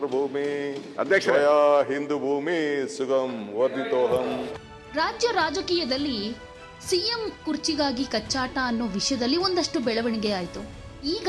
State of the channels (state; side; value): identical; both; correlation 1.00